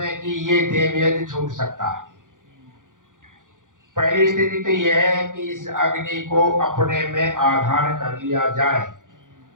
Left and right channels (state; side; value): late; left; 0.88 ms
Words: कि ये देव यज्ञ छूट सकता है। पहली स्थिति तो यह है कि इस अग्नि को अपने में आधान कर लिया जाए।